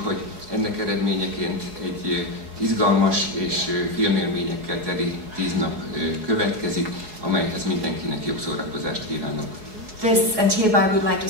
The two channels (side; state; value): left; late; 4.7 ms